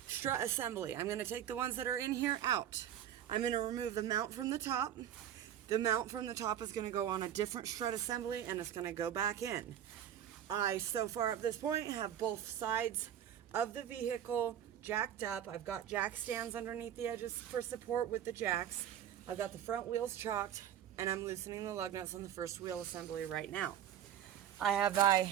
strut assembly. I'm going to take the ones that are in here out. I'm going to remove the mount from the top. The mount from the top is going to go on a different strut assembly, and it's going to go back in. I, so far at this point, have both sides of the vehicle jacked up. I've got jack stands underneath the edges for support with the jacks. I've got the front wheels chalked, and I'm loosening the lug nuts on the first wheel assembly right now. I have a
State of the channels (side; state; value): left; quieter; 10.3 dB